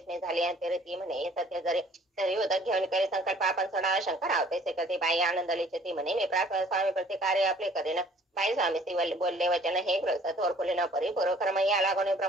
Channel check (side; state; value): both; normal; correlation 0.55